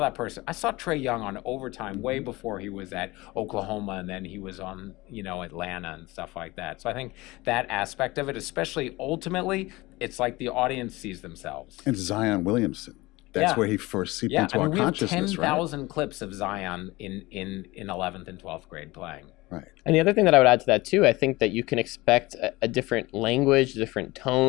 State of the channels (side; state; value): right; quieter; 21.0 dB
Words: that person. I saw Trae Young on Overtime way before he was at Oklahoma, and then he was on Atlanta and stuff like that. So I think that aspect of it, especially ultimately, it's like the audience sees themselves. And Zion Williamson. That's where he first seeped into our consciousness, right? We have 10,000 clips of Zion in 11th and 12th grade playing. Right. And the other thing that I would add to that too, I think that you can expect a different language, different